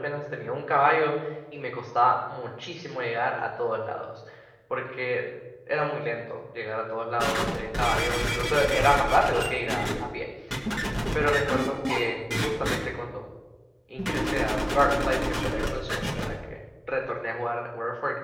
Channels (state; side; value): identical; both; correlation 1.00